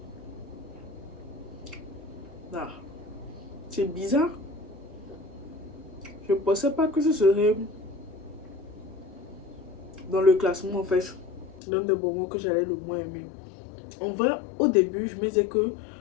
Ah, c'est bizarre. Je ne pensais pas que ce serait dans le classement en fait l'un des bonbons que j'allais le moins aimer. En vrai, au début, je me disais que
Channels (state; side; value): drops out; right; at 11.6 s